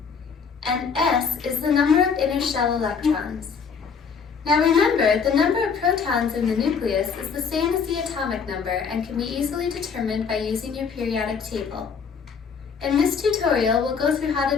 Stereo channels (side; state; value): right; quieter; 6.0 dB